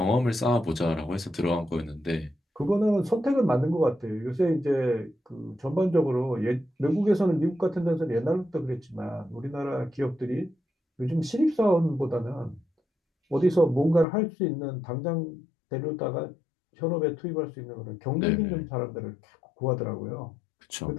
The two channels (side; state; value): right; drops out; at 14.1 s